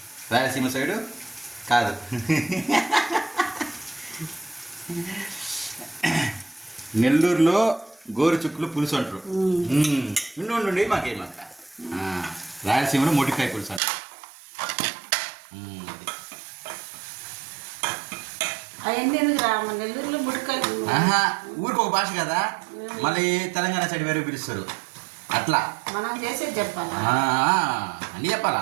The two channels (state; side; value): drops out; left; at 13.8 s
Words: రాయలసీమ సైడు కాదు. నెల్లూరులో గోరుచిక్కులు పులుసు అంటారు. నుండి మాకేమాక రాయలసీమలో మొటికాయ పులుసు అంటారు. నెల్లూరులో ఊరికి ఒక భాష కదా. మళ్ళీ తెలంగాణ సైడ్ వేరే పిలుస్తారు. అట్లా మనం చేసేది చెప్పాలా, అన్నీ